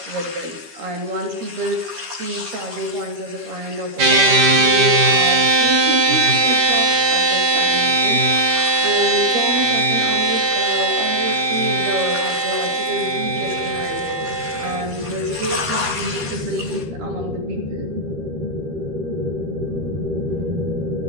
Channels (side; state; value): left; late; 13 ms